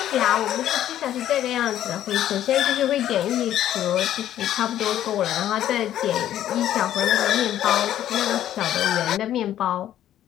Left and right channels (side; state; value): right; quieter; 11.8 dB